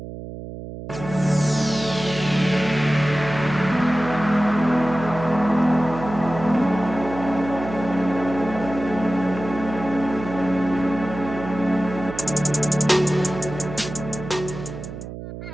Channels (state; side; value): noise; right; hum, 10 dB below the sound